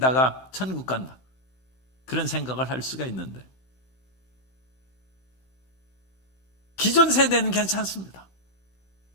천국 간다, 그런 생각을 할 수가 있는데, 기존 세대는 괜찮습니다.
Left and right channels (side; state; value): right; late; 16 ms